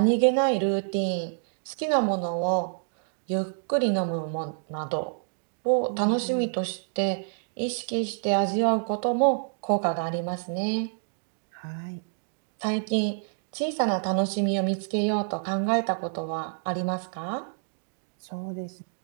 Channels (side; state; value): left; silent; digital silence